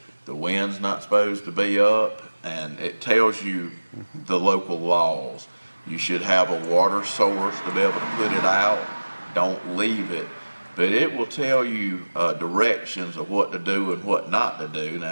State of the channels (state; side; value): inverted; both; correlation -1.00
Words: the wind's not supposed to be up, and it tells you the local laws. You should have a water source to be able to put it out. Don't leave it. But it will tell you directions of what to do and what not to do. Now,